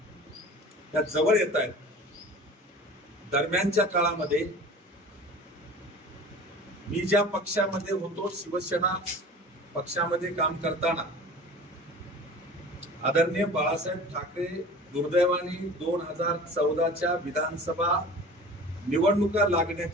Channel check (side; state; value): both; normal; correlation 0.40